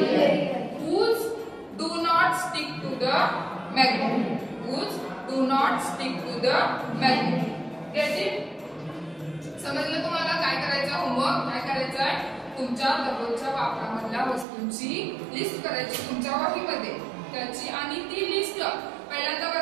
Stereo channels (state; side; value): drops out; left; at 14.5 s